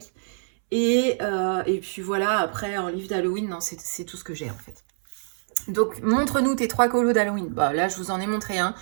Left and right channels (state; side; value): silent; left; 62 dB below the other